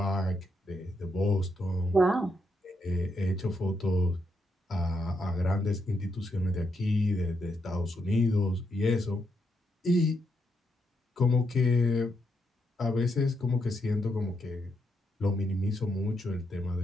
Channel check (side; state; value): both; normal; correlation 0.80